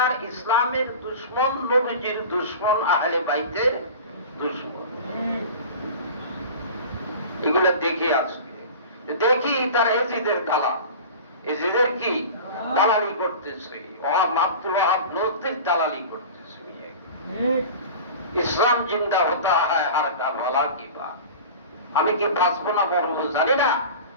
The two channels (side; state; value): both; inverted; correlation -0.35